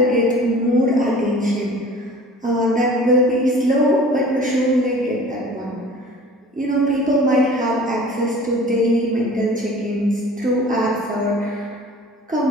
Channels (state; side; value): normal; both; correlation 0.45